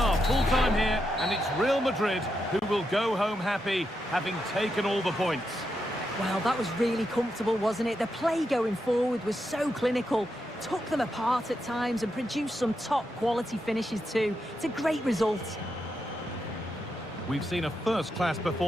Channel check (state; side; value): normal; both; correlation 0.84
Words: full time here, and it's Real Madrid who will go home happy, having taken all the points. Well, that was really comfortable, wasn't it? The play going forward was so clinical, took them apart at times and produced some top-quality finishes too. It's a great result. We've seen a first-class